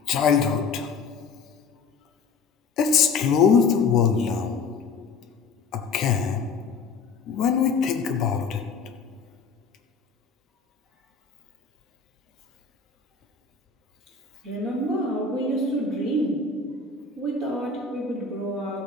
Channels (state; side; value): quieter; right; 4.9 dB